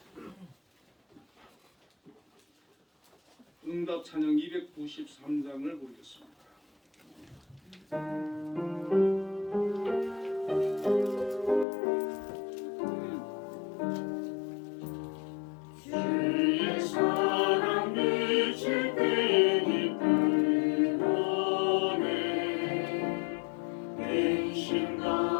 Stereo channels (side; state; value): right; drops out; at 11.7 s